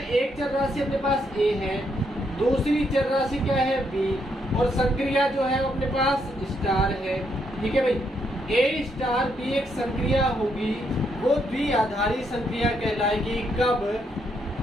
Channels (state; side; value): normal; both; correlation 0.76